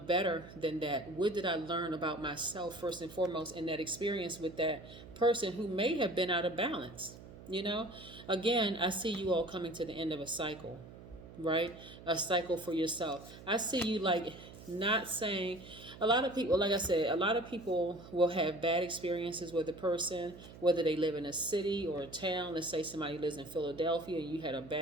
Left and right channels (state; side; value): noise; right; hum, 17 dB below the sound